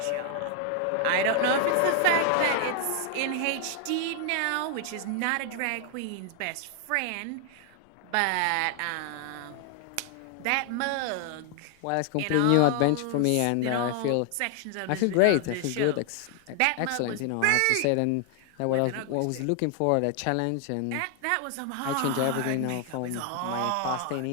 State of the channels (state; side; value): different; both; correlation 0.00